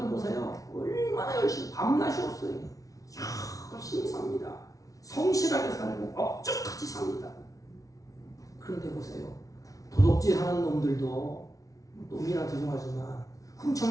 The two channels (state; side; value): late; right; 0.17 ms